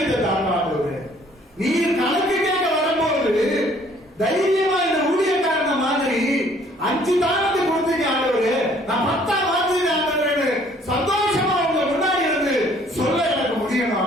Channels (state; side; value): normal; both; correlation 0.59